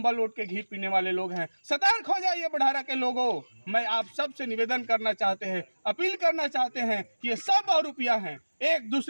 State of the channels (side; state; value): both; inverted; correlation -1.00